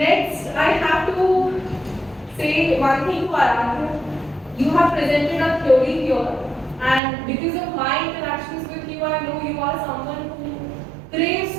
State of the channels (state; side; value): drops out; left; at 7.0 s